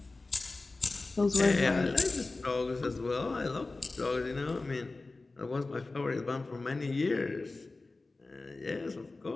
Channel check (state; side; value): quieter; right; 3.4 dB